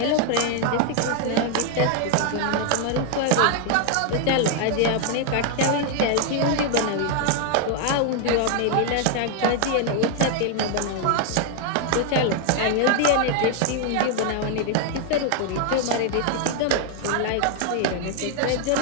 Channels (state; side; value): different; both; correlation 0.00